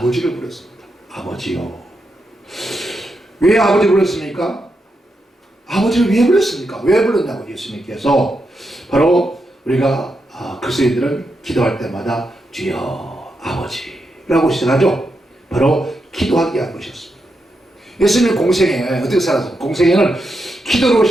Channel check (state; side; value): normal; both; correlation 0.84